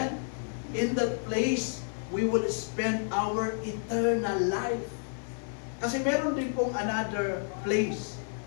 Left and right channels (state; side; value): silent; right; 58 dB below the other